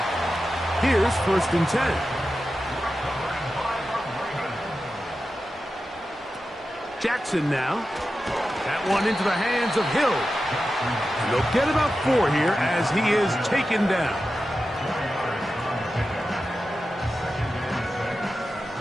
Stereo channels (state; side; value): normal; both; correlation 0.92